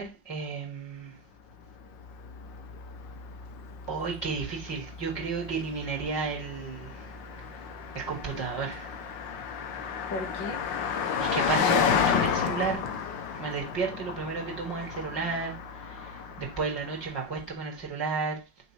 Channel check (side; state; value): right; late; 5.7 ms